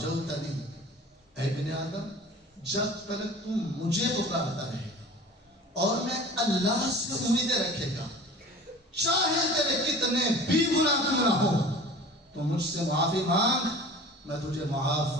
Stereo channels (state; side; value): normal; both; correlation 0.41